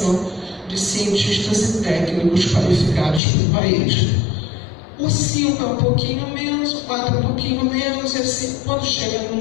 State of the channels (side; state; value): right; drops out; at 3.2 s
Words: de cientistas e técnicos qualificados para o país. O 5 é um pouquinho menos, o 4 é um pouquinho menos, e assim, quando chega no